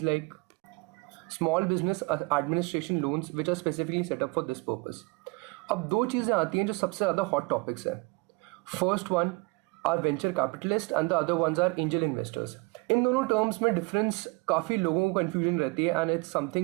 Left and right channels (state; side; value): quieter; left; 26.5 dB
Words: like small business administration loans which are specifically set up for this purpose. अब दो चीज़ें आती हैं जो सबसे ज़्यादा hot topics हैं. First one are venture capitalists and the other ones are angel investors. इन दोनों टर्म्स में डिफरेंस काफ़ी लोगों को कन्फ्यूजन रहती है एंड इट्स